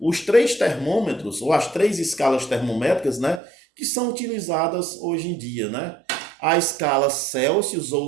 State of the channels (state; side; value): drops out; left; at 3.4 s